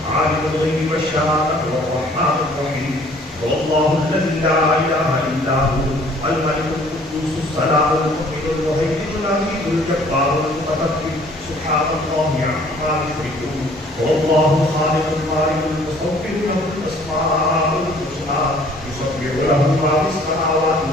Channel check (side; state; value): both; normal; correlation 0.56